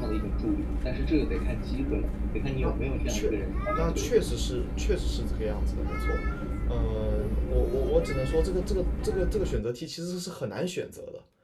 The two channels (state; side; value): identical; both; correlation 1.00